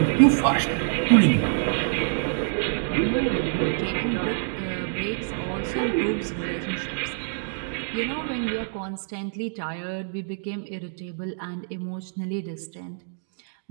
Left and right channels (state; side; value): silent; left; digital silence